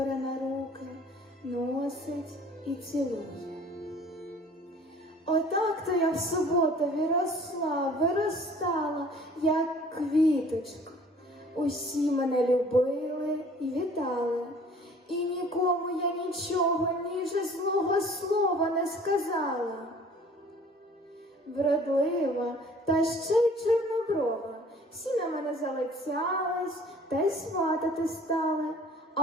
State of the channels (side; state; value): both; normal; correlation 0.51